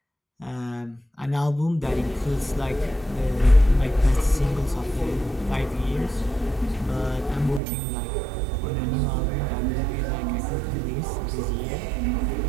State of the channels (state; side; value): drops out; left; at 7.6 s